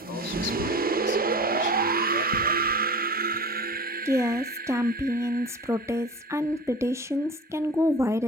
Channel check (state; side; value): normal; both; correlation 0.37